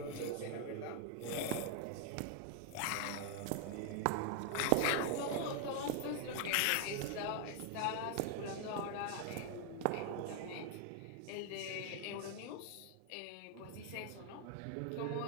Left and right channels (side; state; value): both; different; correlation 0.00